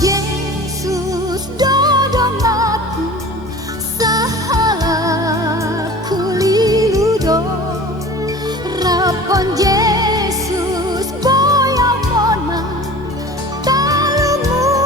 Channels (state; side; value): normal; both; correlation 0.40